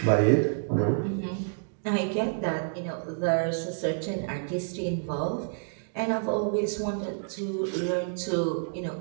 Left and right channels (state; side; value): silent; left; digital silence